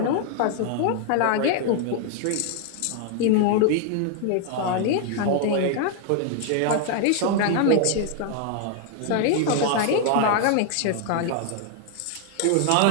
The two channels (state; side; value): different; both; correlation 0.00